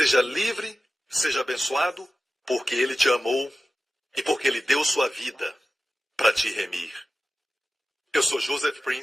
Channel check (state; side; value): normal; both; correlation 0.95